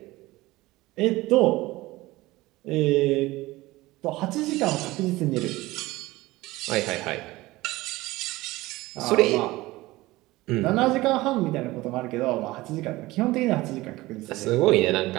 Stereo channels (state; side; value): quieter; left; 19.2 dB